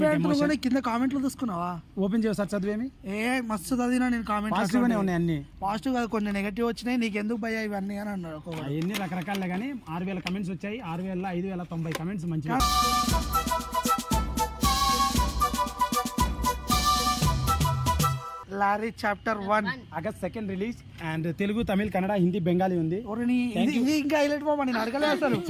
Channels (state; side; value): identical; both; correlation 1.00